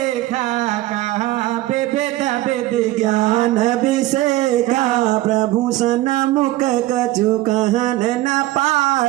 कहा विविध विधि ज्ञान अभिषेका प्रभु सन मुख कछु कहन न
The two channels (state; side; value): quieter; left; 16.8 dB